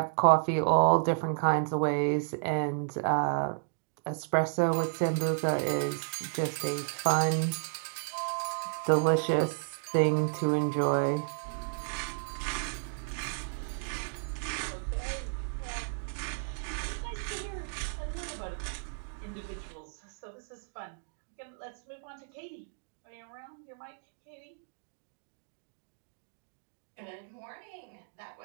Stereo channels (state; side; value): silent; left; digital silence